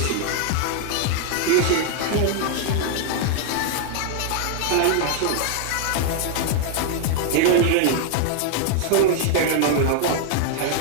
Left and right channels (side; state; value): both; different; correlation 0.00